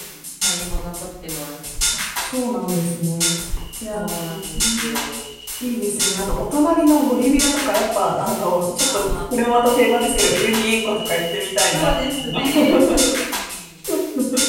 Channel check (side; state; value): both; identical; correlation 1.00